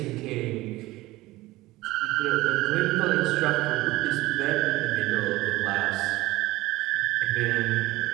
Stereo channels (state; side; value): quieter; left; 18.7 dB